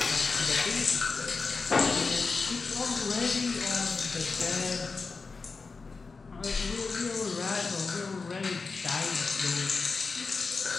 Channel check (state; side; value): quieter; right; 4.4 dB